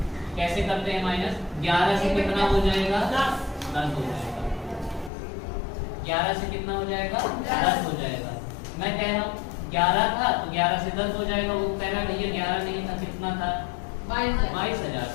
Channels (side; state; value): right; drops out; at 5.1 s